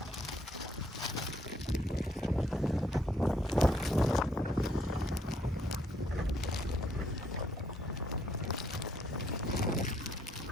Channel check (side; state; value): both; normal; correlation 0.69